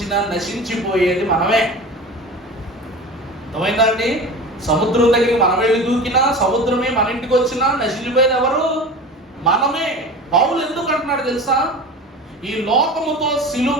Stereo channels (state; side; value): normal; both; correlation 0.34